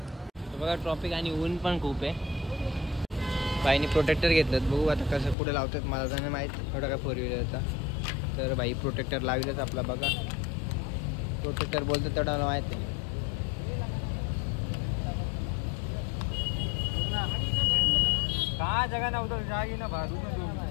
बघा ट्रॉफिक आणि ऊन पण खूप आहे. बाईने प्रोटेक्टर घेतलं, बघू आता कसं पुढे लावतात, मला तर नाही माहीत एवढा काय 4 व्हीलरचा. तर बाई प्रोटेक्टर लावलेच आपला. बघा प्रोटेक्टर बोलतो तेवढा मला माहीत आहे. का जगा नव्हतं जागी ना भाडू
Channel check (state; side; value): drops out; right; at 5.4 s